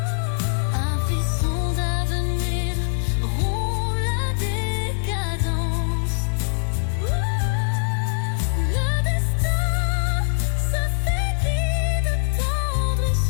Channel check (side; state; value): right; silent; digital silence